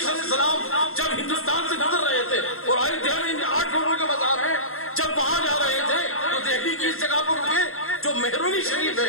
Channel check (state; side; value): late; right; 0.62 ms